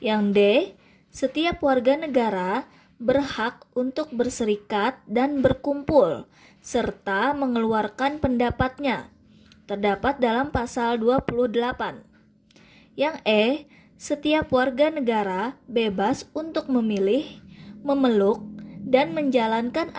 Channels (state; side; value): identical; both; correlation 1.00